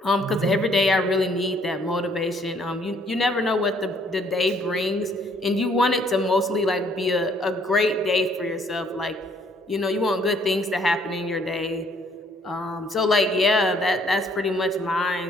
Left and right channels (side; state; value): both; normal; correlation 0.64